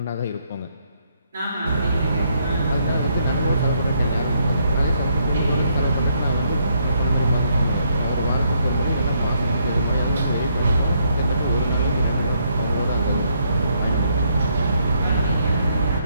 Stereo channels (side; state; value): both; inverted; correlation -0.73